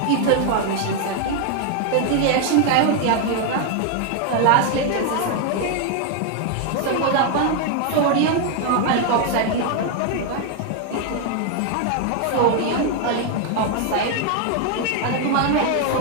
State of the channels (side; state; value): both; different; correlation 0.01